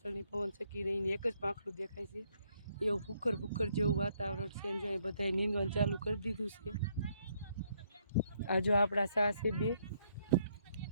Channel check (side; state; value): both; inverted; correlation -0.71